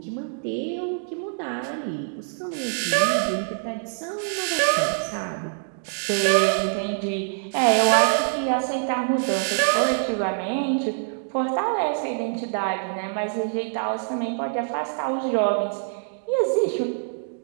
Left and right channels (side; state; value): left; silent; digital silence